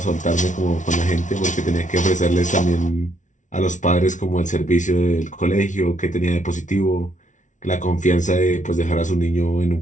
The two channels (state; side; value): late; right; 0.37 ms